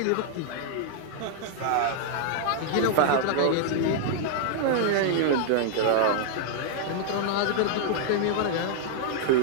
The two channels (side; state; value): both; different; correlation -0.01